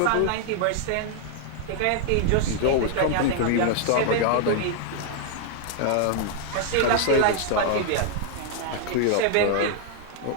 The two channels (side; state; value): both; different; correlation 0.00